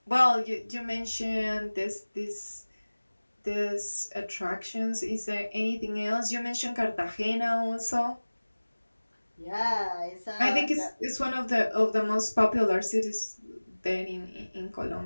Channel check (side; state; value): both; inverted; correlation -1.00